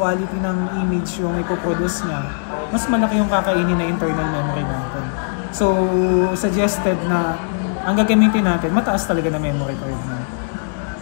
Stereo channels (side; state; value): right; silent; 66 dB below the other